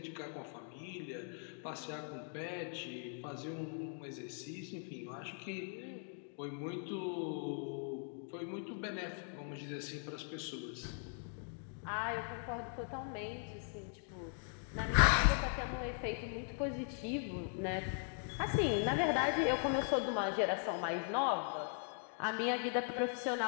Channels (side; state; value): right; silent; 51 dB below the other